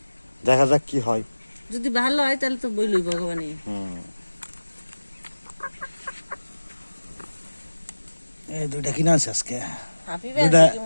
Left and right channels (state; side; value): inverted; both; correlation -1.00